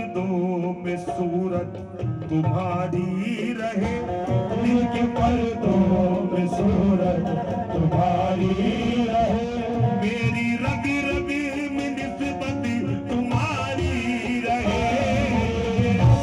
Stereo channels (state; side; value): identical; both; correlation 1.00